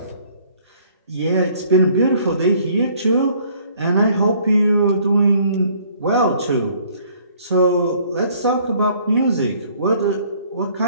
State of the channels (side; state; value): both; inverted; correlation -0.59